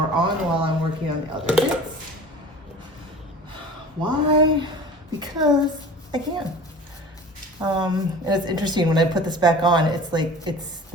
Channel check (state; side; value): normal; both; correlation 0.40